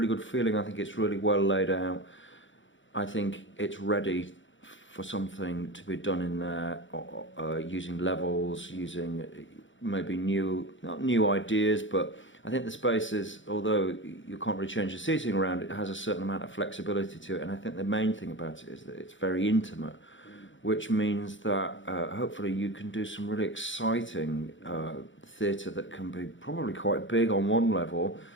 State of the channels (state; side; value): late; right; 0.55 ms